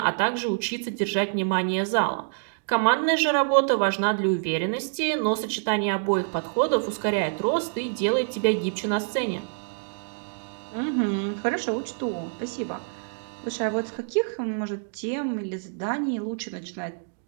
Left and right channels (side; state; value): left; silent; digital silence